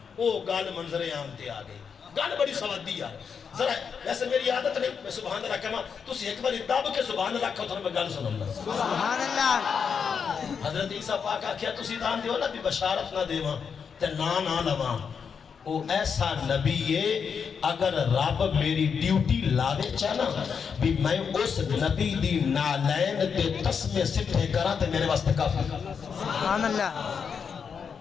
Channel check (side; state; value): right; quieter; 6.5 dB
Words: وہ گل منظر عام تے آ گئی. گل بڑی سوادی یار. ذرا ویسے میری عادت نہیں میں سبحان اللہ کہاں، تسی ایک بار دب کے سبحان اللہ کہو تو میں گل سنوں. سبحان اللہ. حضرت عیسیٰ پاک آکھیا تسی دان دیو نا بھی بشارت نہ دیواں تے نہ لواں. وہ ایسا نبی ہے اگر رب میری ڈیوٹی لاوے چاہنا بھی میں اس نبی دی نالین تے تسمے سٹھے کرا تے میرے واسطے کافی. سبحان اللہ.